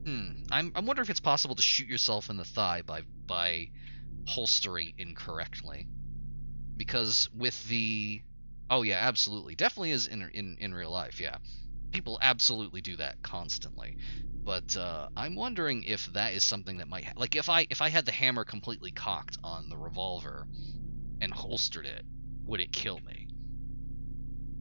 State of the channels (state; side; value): inverted; both; correlation -1.00